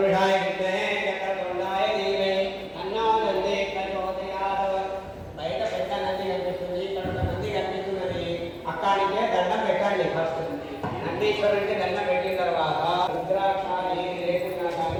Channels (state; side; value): identical; both; correlation 1.00